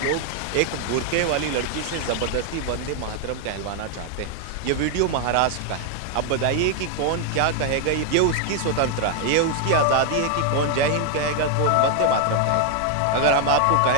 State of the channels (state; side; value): different; both; correlation 0.00